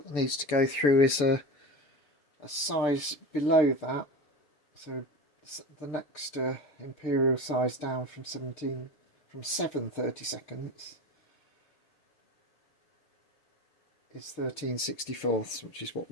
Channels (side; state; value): right; late; 7.5 ms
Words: needs to go through is a size below that. So the next imperial size down from 7/32 is 13/64, which is what